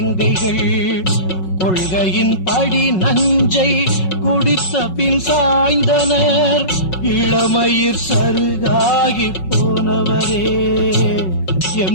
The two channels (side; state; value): right; late; 5.4 ms